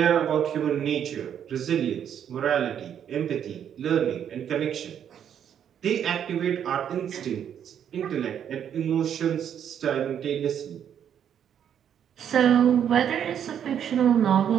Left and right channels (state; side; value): quieter; left; 9.0 dB